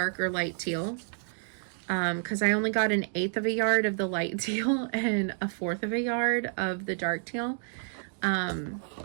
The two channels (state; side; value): silent; left; digital silence